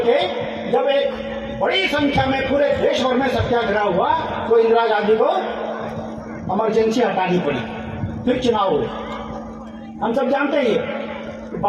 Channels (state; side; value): identical; both; correlation 1.00